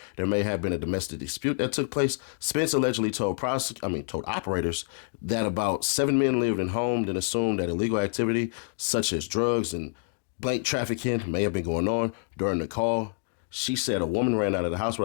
there may have been a domestic dispute that took place. Spence allegedly told operators that about 7 men lived in home, then assumed that illegal activity such as drugs and blank trafficking may have been going on during the call. She said a woman ran out of the house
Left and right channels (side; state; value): right; silent; digital silence